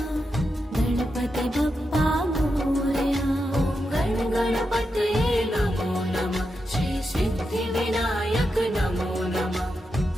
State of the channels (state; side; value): normal; both; correlation 0.87